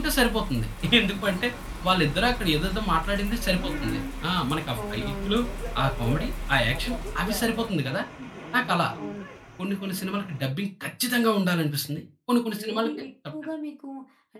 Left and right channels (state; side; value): identical; both; correlation 1.00